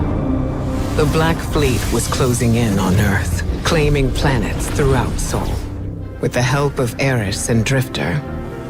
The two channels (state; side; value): identical; both; correlation 1.00